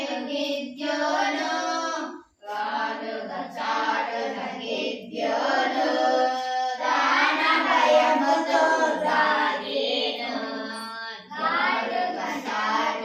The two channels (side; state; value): both; identical; correlation 1.00